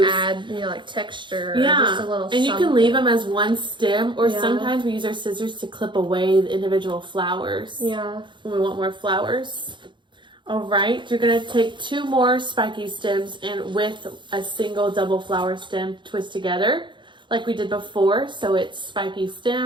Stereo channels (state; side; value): late; left; 0.23 ms